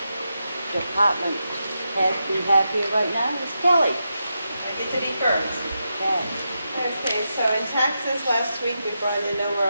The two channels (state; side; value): inverted; both; correlation -0.87